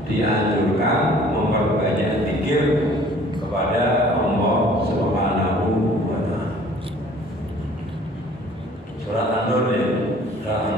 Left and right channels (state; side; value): normal; both; correlation 0.53